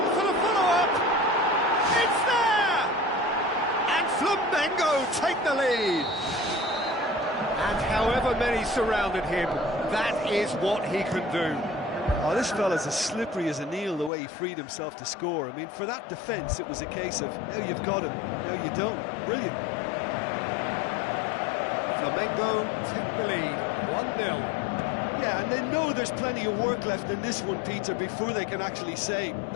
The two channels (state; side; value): drops out; right; at 14.1 s